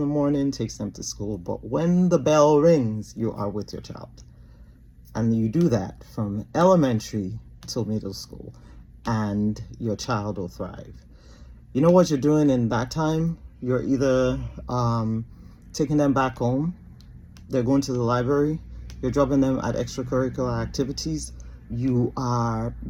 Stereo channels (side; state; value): both; identical; correlation 1.00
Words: morning, takes them to school, but when the bell rings, you are with your child. And you do that from elementary till middle school, and your child will thrive. You know what you're doing in that time? You're either taking them back home, they're going to the library, you're dropping them at extracurricular activities, you are